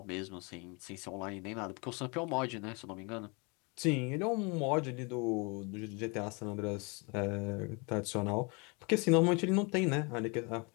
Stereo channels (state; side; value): quieter; right; 30.6 dB